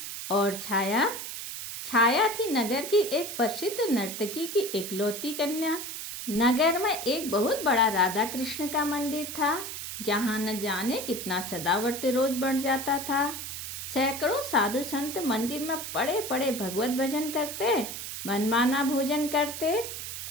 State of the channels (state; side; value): noise; right; hiss, 7 dB below the sound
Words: और छाया छाया थी नगर की एक प्रसिद्ध नर्तकी की इकलौती कन्या। नगर में एक बहुत बड़ा राधा कृष्ण का मंदिर था, जहाँ न जाने कितना सदावर्त रोज बढ़ जाता था। सैकड़ों साधु संत मंदिर में पड़े पड़े भगवत भजन करते, मनमाना भोजन करते